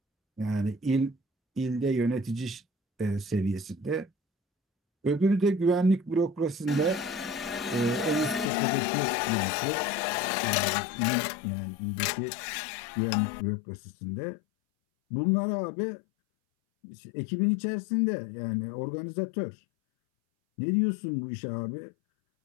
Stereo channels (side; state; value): right; drops out; at 8.5 s